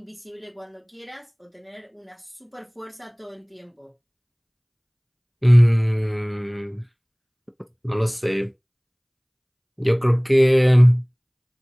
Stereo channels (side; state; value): both; identical; correlation 1.00